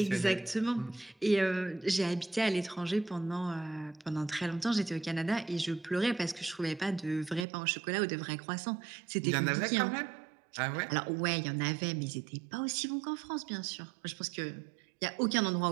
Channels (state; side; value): drops out; left; at 7.5 s